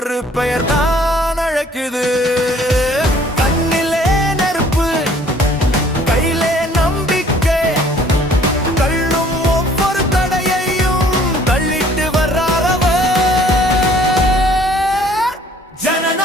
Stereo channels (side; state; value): both; normal; correlation 0.57